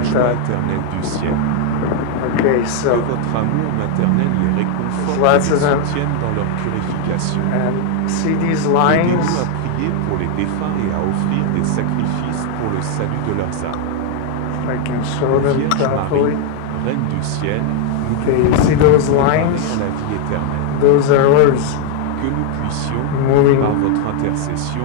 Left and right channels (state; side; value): different; both; correlation 0.00